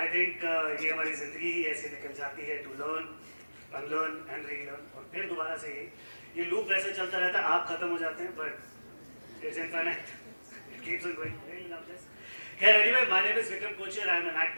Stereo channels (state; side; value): inverted; both; correlation -1.00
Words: I think ये हमारी ज़िंदगी ही ऐसे निकल जाती है to learn, unlearn and relearn और फिर दोबारा से ये loop वैसे चलता रहता है, आप खत्म हो जाते हैं but it's infinite. It keeps on going. Really love this. Yeah, anyway, my name is Vikram Kochhar. I am an